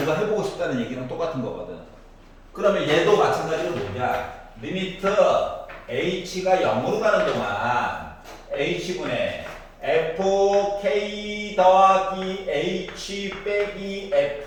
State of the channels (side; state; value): both; identical; correlation 1.00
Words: 해보고 싶다는 얘기랑 똑같은 거거든. 그러면 얘도 마찬가지로 뭐냐? 리미트 H가 0으로 가는 동안 H분의 FK 더하기 H 빼기